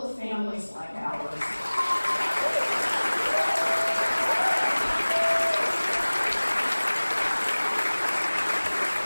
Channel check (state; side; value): inverted; both; correlation -1.00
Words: families like ours.